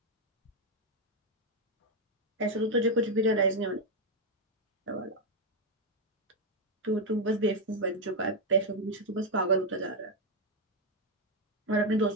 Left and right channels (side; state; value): both; normal; correlation 0.02